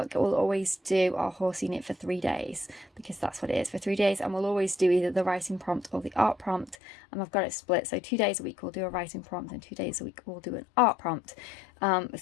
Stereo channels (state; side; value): drops out; right; at 6.8 s